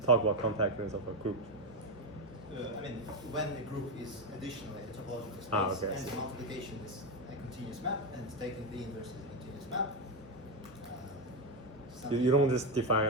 talk about compactness of a group? I mean, when a group is additionally a topological space, okay. and the multiplication is a continuous map, and taking the inverse is a continuous map. You don't just define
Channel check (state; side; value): normal; both; correlation 0.10